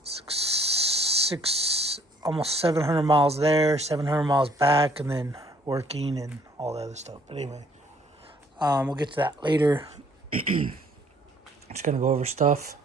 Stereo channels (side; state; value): both; normal; correlation 0.61